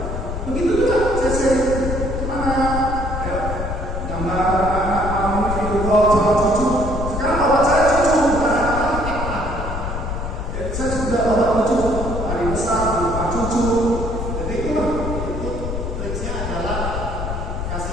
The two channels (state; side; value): noise; left; rumble, 4 dB below the sound